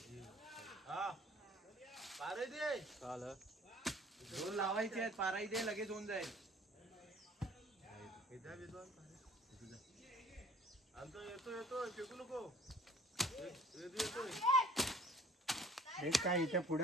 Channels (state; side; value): normal; both; correlation 0.52